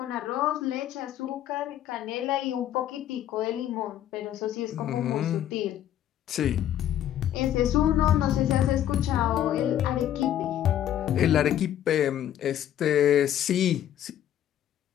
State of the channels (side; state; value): right; quieter; 11.3 dB